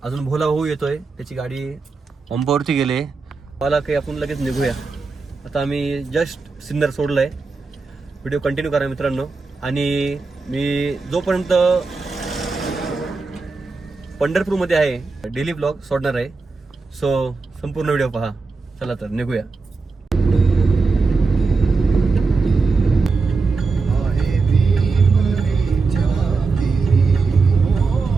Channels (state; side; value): quieter; left; 4.2 dB